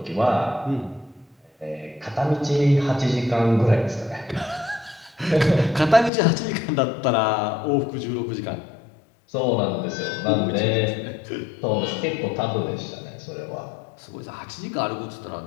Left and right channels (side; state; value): right; drops out; at 6.1 s